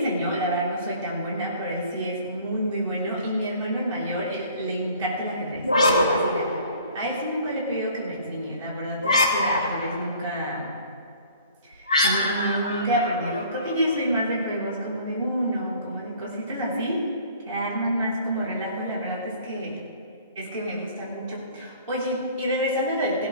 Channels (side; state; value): both; inverted; correlation -0.52